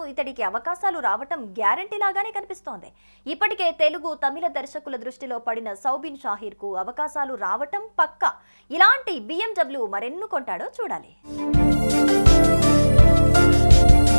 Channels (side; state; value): both; inverted; correlation -1.00